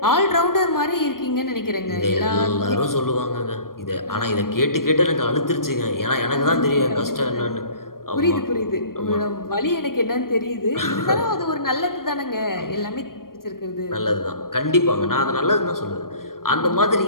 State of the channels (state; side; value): late; right; 0.91 ms